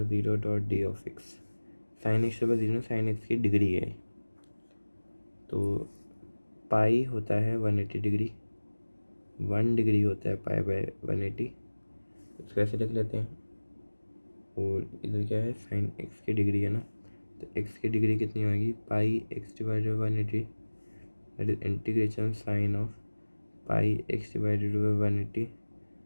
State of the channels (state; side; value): inverted; both; correlation -1.00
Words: 0 dot d of x. Sine x to the power 0 sine x की डिग्री है, तो पाई होता है 180 डिग्री, 1 डिग्री होता है पाई बाय 180, इसको ऐसे लिख लेते हैं। और इधर क्या है, साइन एक्स की डिग्री है ना, तो एक्स की डिग्री कितनी होगी, पाई x divided by 180, that is integration sine of pi x divided by 180